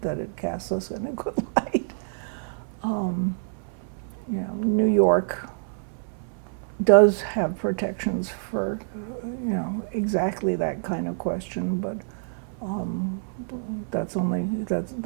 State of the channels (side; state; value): left; silent; 60 dB below the other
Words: it casts us in a good light. New York does have protections for, exactly that kind of question, but that's